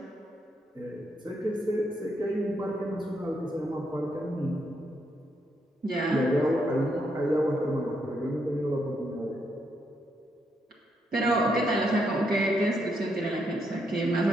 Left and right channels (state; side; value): normal; both; correlation 0.78